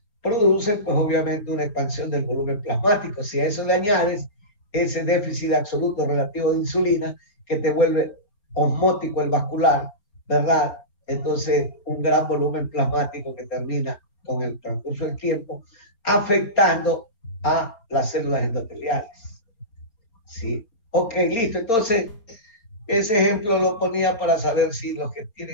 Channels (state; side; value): late; right; 4.4 ms